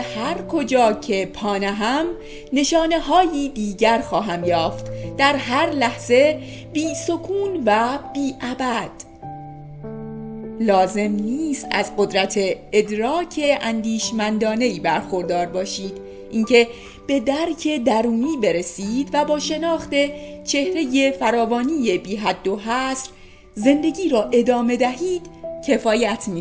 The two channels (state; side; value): identical; both; correlation 1.00